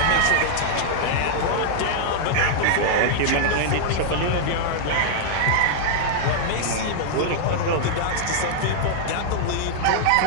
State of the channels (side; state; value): both; different; correlation -0.01